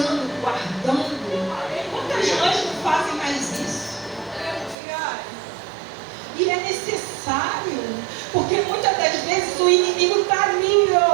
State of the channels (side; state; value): left; drops out; at 4.8 s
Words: guardando. Quantas mães não fazem mais isso? E é necessário, porque muitas das vezes o inimigo está ali,